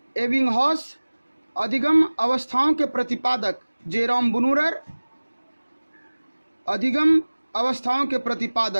एबिंगहॉस। अधिगम अवस्थाओं के प्रतिपादक जेरोम ब्रूनर। अधिगम अवस्थाओं के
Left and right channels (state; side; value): inverted; both; correlation -1.00